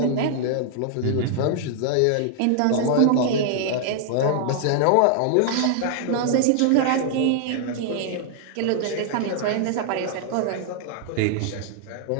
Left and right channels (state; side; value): different; both; correlation 0.00